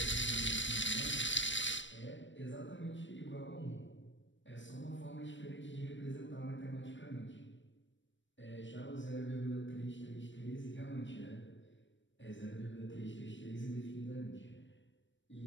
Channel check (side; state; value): right; late; 0.54 ms